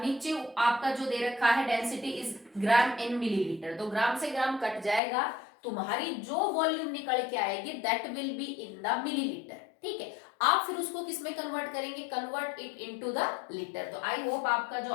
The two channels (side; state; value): right; drops out; at 5.0 s